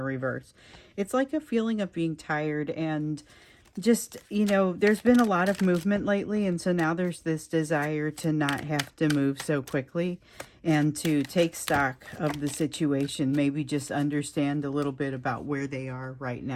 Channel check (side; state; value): both; identical; correlation 1.00